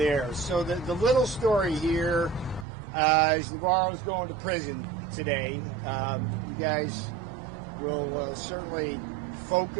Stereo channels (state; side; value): drops out; left; at 2.7 s